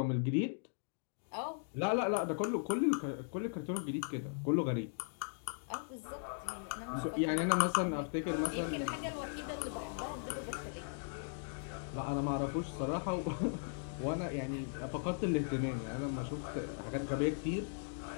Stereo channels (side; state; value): right; silent; digital silence